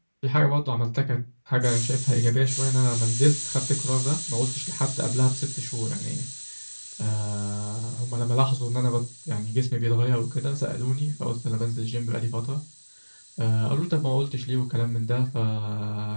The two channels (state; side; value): inverted; both; correlation -1.00